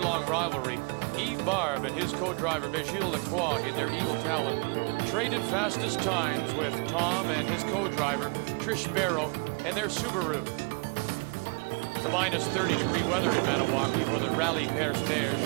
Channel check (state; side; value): quieter; left; 34.0 dB